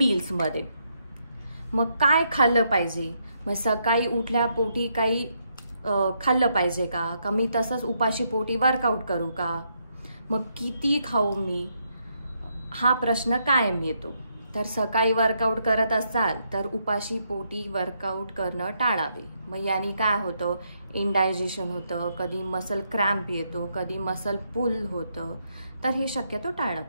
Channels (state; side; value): inverted; both; correlation -0.77